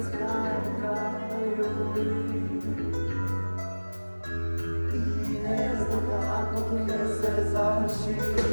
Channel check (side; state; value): both; inverted; correlation -1.00